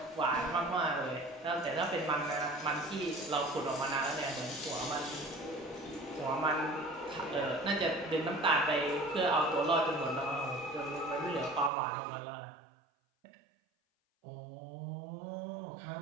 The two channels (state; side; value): drops out; left; at 11.7 s